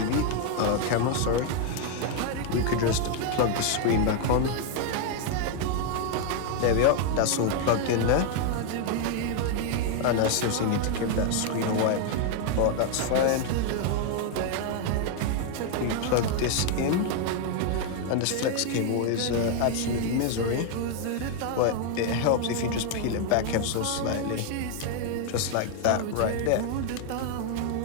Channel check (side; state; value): both; different; correlation 0.00